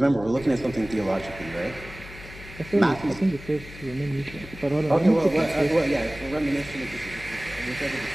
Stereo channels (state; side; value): noise; left; hum, 16 dB below the sound